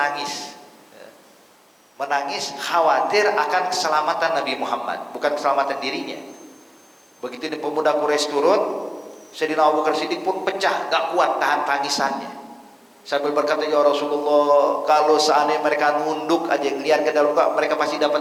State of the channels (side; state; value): both; identical; correlation 1.00